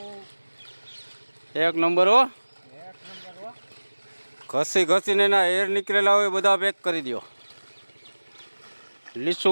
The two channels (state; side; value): inverted; both; correlation -1.00